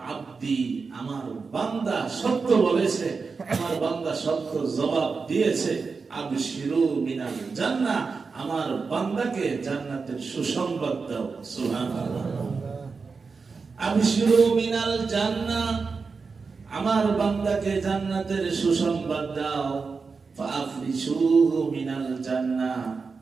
আব্দি, আমার বান্দা সত্য বলেছে, আমার বান্দা সত্য জবাব দিয়েছে, আবশিরু মিনাল জান্নাহ, আমার বান্দাকে জান্নাতের সুসংবাদ দাও সুবহানাল্লাহ। আবশিরু মিনাল জান্নাহ, আমার বান্দাকে জান্নাতের সুসংবাদ দাও, ফাফরিশুহু মিনাল জান্নাহ,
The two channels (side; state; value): left; quieter; 4.7 dB